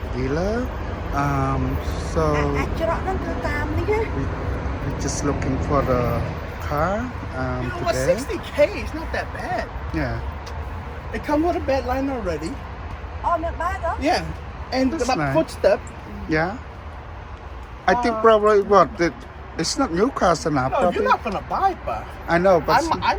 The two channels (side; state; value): both; identical; correlation 1.00